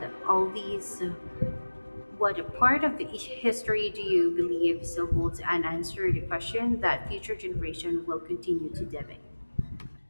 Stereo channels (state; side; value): inverted; both; correlation -1.00